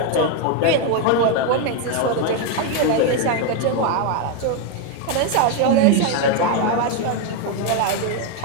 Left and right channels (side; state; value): both; different; correlation 0.02